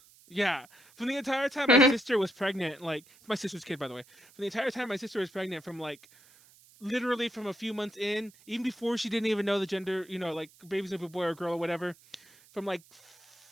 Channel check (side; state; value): right; noise; hiss, 26 dB below the sound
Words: Yeah, from the entire time my sister was pregnant, like my sister's kid, by the way. From the entire time my sister was pregnant, from like literally from a few months in, even before she didn't even know the gender, like baby's gonna be a boy or girl or whatever, from like